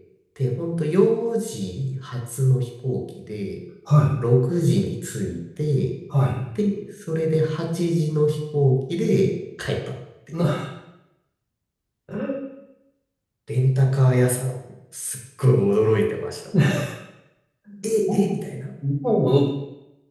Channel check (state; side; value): identical; both; correlation 1.00